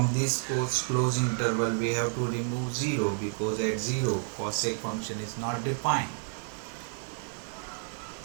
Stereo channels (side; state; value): left; silent; 58 dB below the other